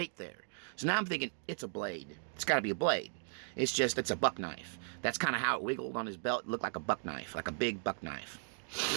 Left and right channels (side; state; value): left; silent; digital silence